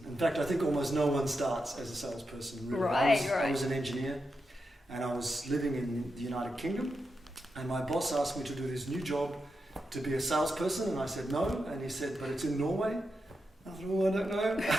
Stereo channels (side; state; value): both; normal; correlation 0.87